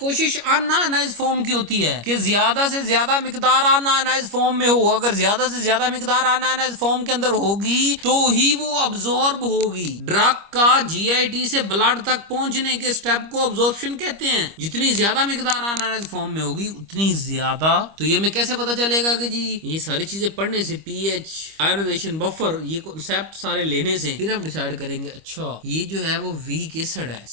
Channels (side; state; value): left; late; 25 ms